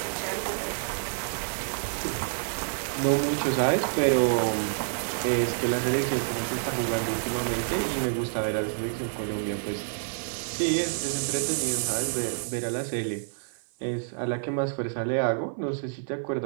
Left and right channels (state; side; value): silent; left; 56 dB below the other